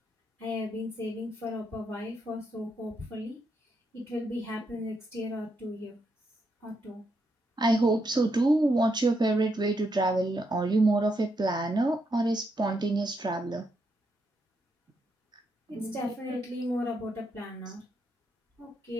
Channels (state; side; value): normal; both; correlation 0.80